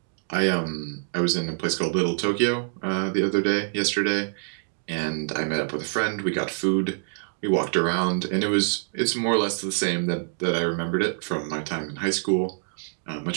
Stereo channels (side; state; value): left; silent; digital silence